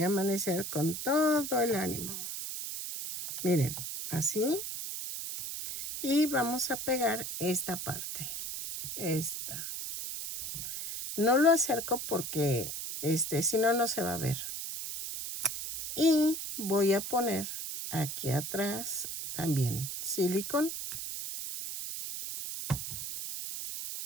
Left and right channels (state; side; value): noise; right; hiss, 6 dB below the sound